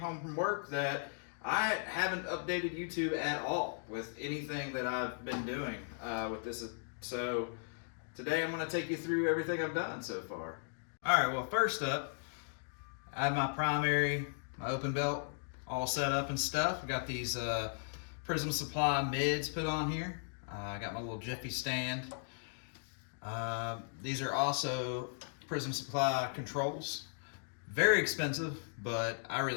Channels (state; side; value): silent; right; digital silence